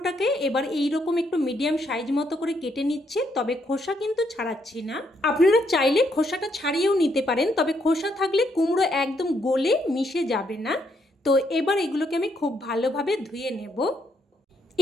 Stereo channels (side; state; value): both; normal; correlation 0.74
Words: এবার এইরকম একটু মিডিয়াম সাইজ মতো করে কেটে নিচ্ছে, তবে খোসা কিন্তু ছাড়াচ্ছি না। আপনারা চাইলে খোসাটা ছাড়িয়েও নিতে পারেন, তবে খোসা থাকলে কুমড়ো একদম গলে মিশে যাবে না। তো এবার এগুলোকে আমি খুব ভালোভাবে ধুয়ে নেব।